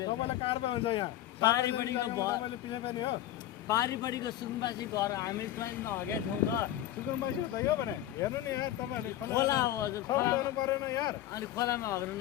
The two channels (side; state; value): right; quieter; 13.0 dB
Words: तपाईँलाई कारबाही हुन्छ यहाँ पारिपट्टिको तपाईँले पिछे फेर्ने हो। पारिपट्टिको सुकुम्बासी घर हामी ट्रेनमा हगेको छौँ त सुकुम्बासी हो त यो भने हेर्नु नि यार तपाईँहरूले खोला हो हजुर खोला गर्नु परेन यार। अनि खोलामा हग्न